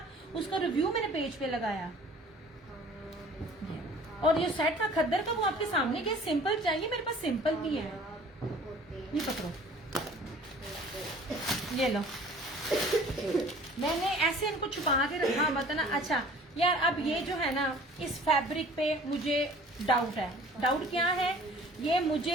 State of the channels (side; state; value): both; normal; correlation 0.49